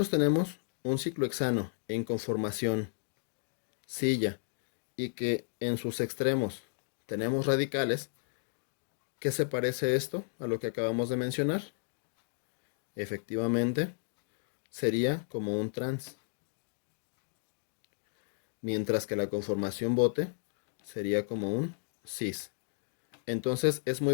tenemos un ciclohexano en conformación silla y que en sus extremos tenemos radicales, ¿qué se parece esto a lo que acabamos de mencionar? Efectivamente, sería como un trans, mientras que la conformación bote sería como un cis. Entonces es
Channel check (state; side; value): silent; right; digital silence